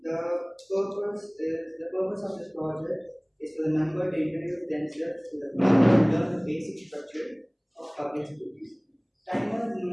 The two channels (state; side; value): identical; both; correlation 1.00